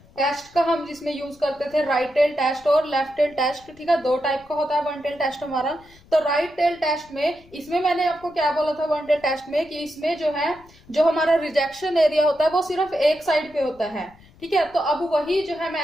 टेस्ट का हम जिसमें यूज करते थे राइट टेल टेस्ट और लेफ्ट टेल टेस्ट, ठीक है, दो टाइप का होता है वन टेल टेस्ट हमारा। तो राइट टेल टेस्ट में इसमें मैंने आपको क्या बोला था वन टेल टेस्ट में कि इसमें जो है जो हमारा रिजेक्शन एरिया होता है वो सिर्फ एक साइड पे होता है, ठीक है। तो अब वही जो है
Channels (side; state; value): left; noise; rumble, 26 dB below the sound